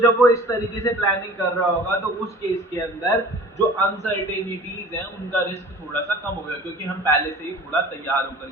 जब वो इस तरीके से प्लानिंग कर रहा होगा तो उस केस के अंदर जो अनसर्टेनिटीज हैं उनका रिस्क थोड़ा सा कम होगा, क्योंकि हम पहले से ही थोड़ा तैयार होकर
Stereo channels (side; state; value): both; normal; correlation 0.44